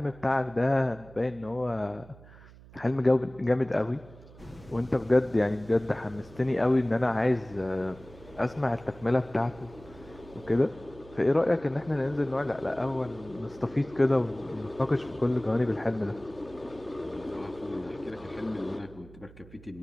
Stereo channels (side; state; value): right; noise; hum, 21 dB below the sound